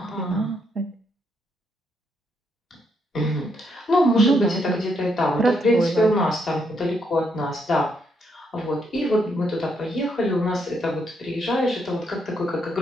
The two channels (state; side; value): normal; both; correlation 0.76